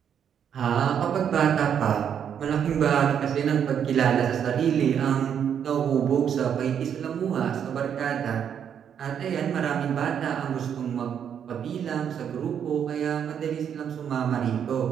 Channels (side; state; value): left; quieter; 8.4 dB